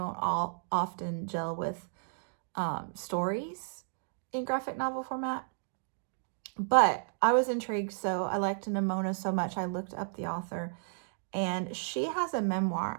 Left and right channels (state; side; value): silent; left; digital silence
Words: often gel with stories in graphic novel format. But I was intrigued, so I liked Nimona so much, I looked up the author, and she has a memoir